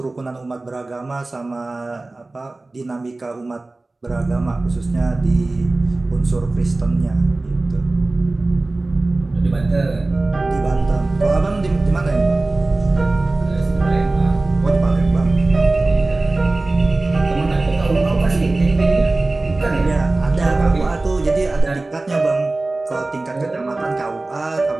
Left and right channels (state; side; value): quieter; left; 3.1 dB